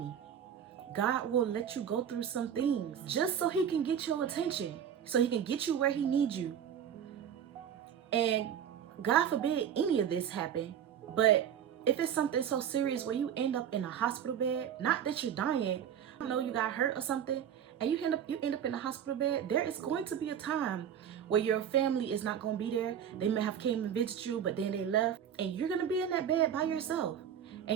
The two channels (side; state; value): left; quieter; 9.0 dB